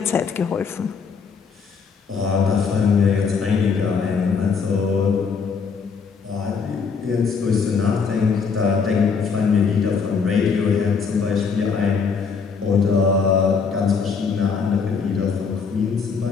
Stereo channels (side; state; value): right; quieter; 5.6 dB